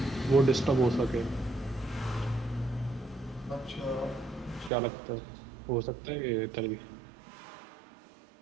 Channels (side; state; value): left; drops out; at 4.7 s